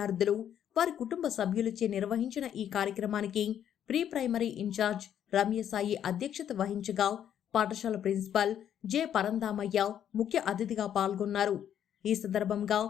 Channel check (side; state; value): right; quieter; 9.8 dB